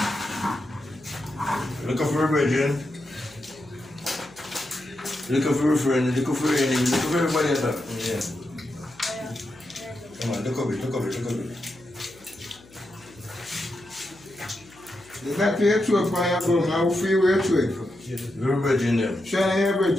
Looking for a Virgin. Looking for a friend, looking for an enemy, looking for everybody else. Yeah. Come on, look up it, look up it, look up it. Is that your truck on your phone? How feel your truck? We're a Virgin then. Shana, you're a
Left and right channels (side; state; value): left; noise; hum, 25 dB below the sound